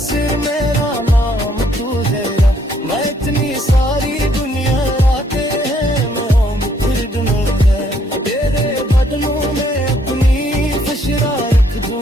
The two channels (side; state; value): both; normal; correlation 0.67